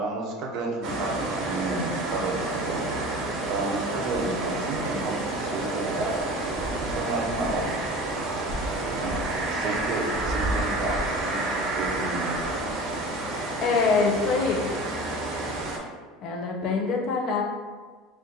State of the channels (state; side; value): normal; both; correlation 0.37